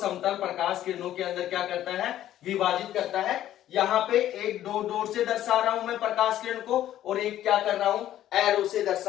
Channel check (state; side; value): quieter; right; 12.4 dB